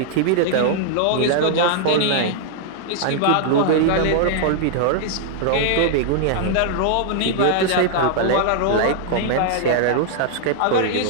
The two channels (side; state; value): both; different; correlation -0.01